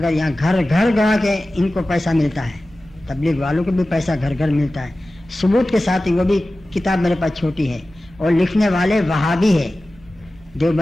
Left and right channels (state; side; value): normal; both; correlation 0.96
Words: یہاں گھر گھر گا کے ان کو پیسہ ملتا ہے، تبلیغ والوں کو بھی پیسہ گھر گھر ملتا ہے، ثبوت کے ساتھ ہی۔ وہ بھی کتاب میرے پاس چھوٹی ہے، اور لکھنے والے وہابی ہے،